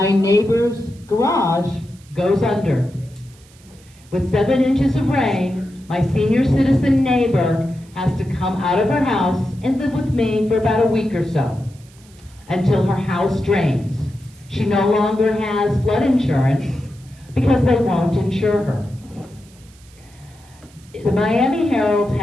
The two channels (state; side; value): noise; right; hiss, 27 dB below the sound